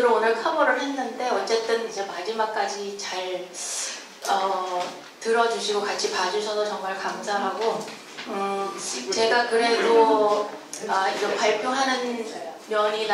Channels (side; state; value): both; identical; correlation 1.00